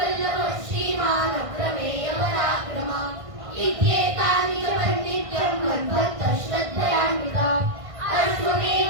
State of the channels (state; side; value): late; left; 1.5 ms